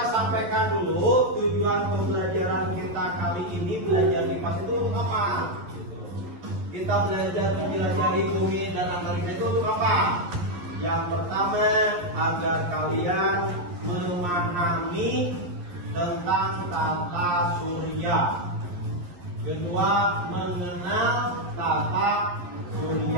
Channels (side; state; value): left; late; 11 ms